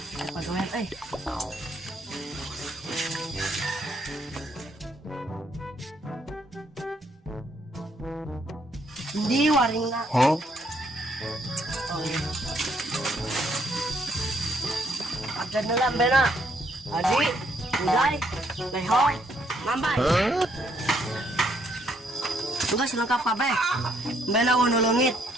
Pagawean euy. Di waringna. Hah? Oh iya. Ada dalam bena. Adi, Ulay, Lehoy, Mambay. Tugas lengkap kabeh. Bena nulungit.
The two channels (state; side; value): normal; both; correlation 0.70